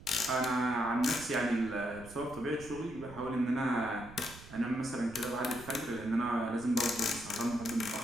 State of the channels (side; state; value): right; noise; rumble, 17 dB below the sound